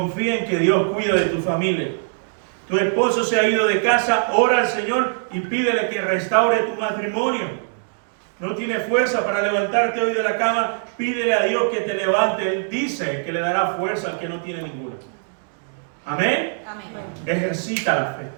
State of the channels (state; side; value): silent; left; digital silence